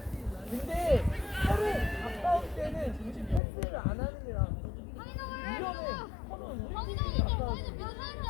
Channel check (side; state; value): right; drops out; at 3.4 s